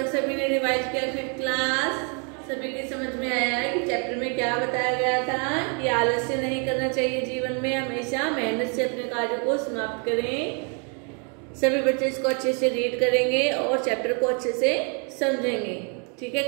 सभी ने रिवाइज किया। फिर क्लास सभी की समझ में आया है कि चैप्टर में क्या बताया गया था कि आलस्य नहीं करना चाहिए, जीवन में हमेशा मेहनत से अपने कार्य को समाप्त करें। सभी बच्चे इसको अच्छे से रीड करेंगे और चैप्टर को अच्छे से समझेंगे। ठीक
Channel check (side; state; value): left; quieter; 37.5 dB